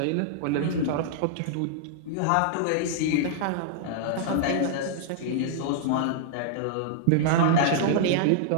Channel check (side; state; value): both; different; correlation -0.01